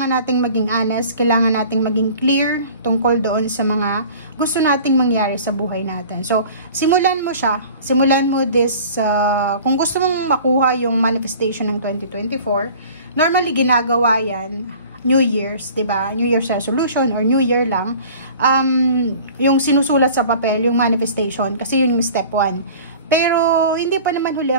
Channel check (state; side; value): inverted; both; correlation -0.44